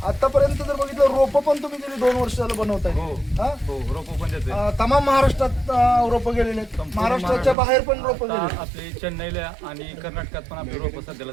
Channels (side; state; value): left; drops out; at 7.6 s